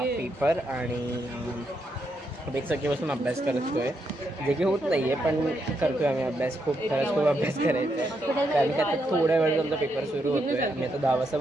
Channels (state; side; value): normal; both; correlation 0.80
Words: आणि एक सगळीपासून अभ्यास करतोय, जे की होत नाही आहे पण करतोय आम्ही अभ्यास. खरंच खूप अभ्यास करायचा आहे, कारण की आता थोड्या वेळ आमचा पेपर सुरू होतो आहे. आम्ही आता 10 वाजता